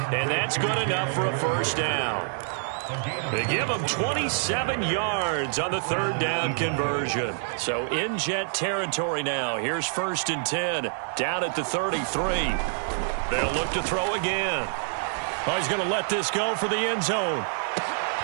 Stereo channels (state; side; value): silent; left; 60 dB below the other